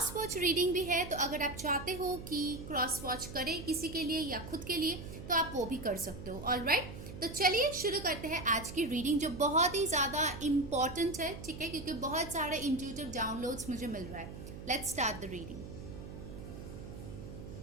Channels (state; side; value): noise; right; hum, 11 dB below the sound